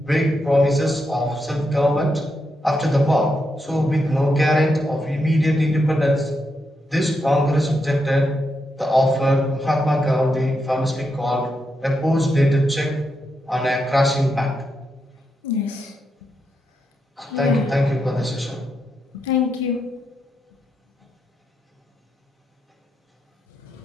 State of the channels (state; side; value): normal; both; correlation 0.83